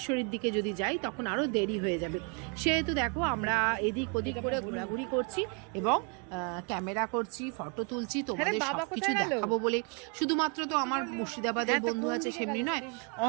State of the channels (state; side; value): quieter; left; 35.9 dB